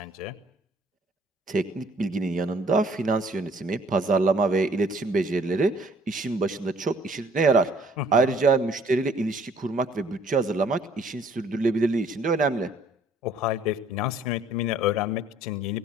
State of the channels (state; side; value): normal; both; correlation 0.59